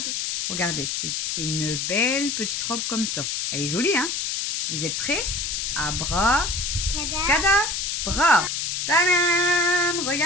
Regardez, c'est une belle petite robe comme ça. Elle est jolie, hein? Vous êtes prêts? Abra, Cada. cadabra. Tadam!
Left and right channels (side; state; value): left; noise; hiss, 1 dB below the sound